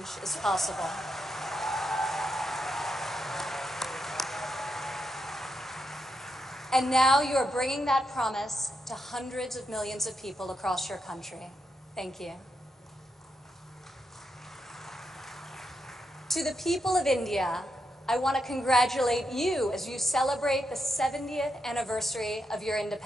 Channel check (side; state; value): both; normal; correlation 0.83